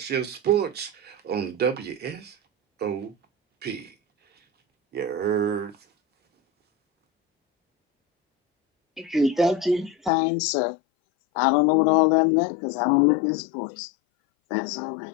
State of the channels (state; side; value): drops out; right; at 10.1 s